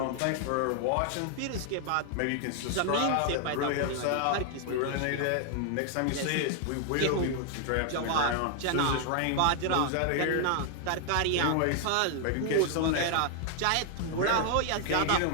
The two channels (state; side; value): different; both; correlation 0.00